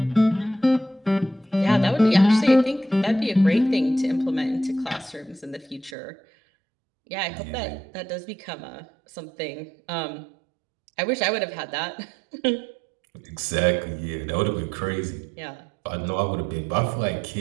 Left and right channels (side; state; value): left; drops out; at 6.0 s